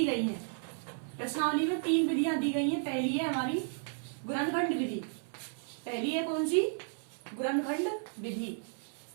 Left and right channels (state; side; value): silent; left; 55 dB below the other